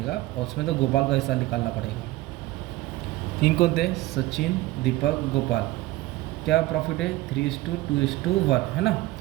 और उसमें तो गोपाल का हिस्सा निकालना पड़ेगा। 3 कौन थे, सचिन, दीपक, गोपाल, क्या प्रॉफिट है 3:2:1, है ना।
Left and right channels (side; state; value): left; quieter; 17.9 dB